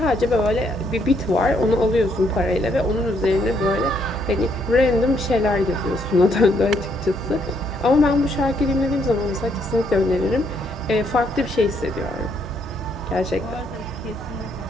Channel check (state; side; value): normal; both; correlation 0.72